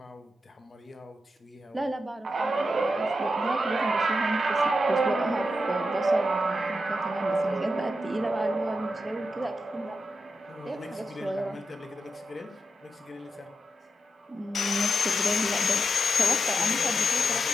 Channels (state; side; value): normal; both; correlation 0.87